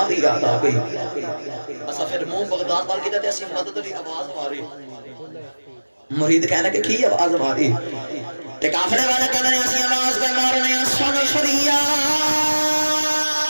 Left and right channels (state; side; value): inverted; both; correlation -1.00